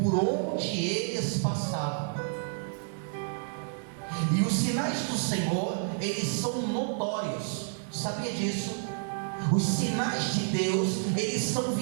onde eles passavam. E os sinais do Senhor, eles são notórios. Sabia disso? Os sinais de Deus, eles são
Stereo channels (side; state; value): left; silent; digital silence